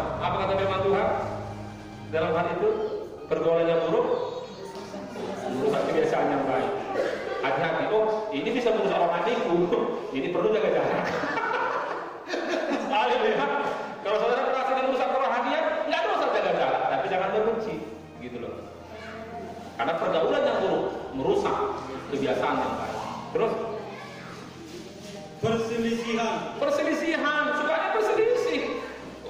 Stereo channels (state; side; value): identical; both; correlation 1.00